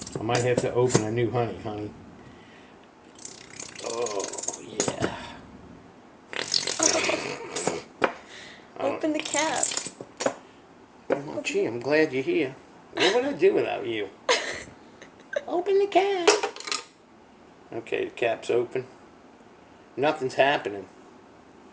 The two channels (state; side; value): identical; both; correlation 1.00